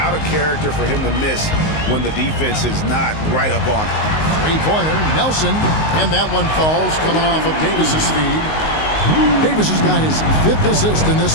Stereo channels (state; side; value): late; right; 19 ms